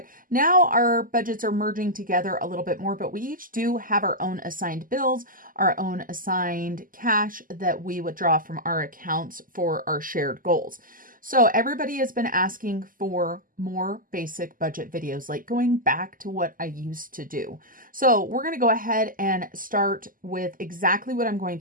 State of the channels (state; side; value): late; left; 0.41 ms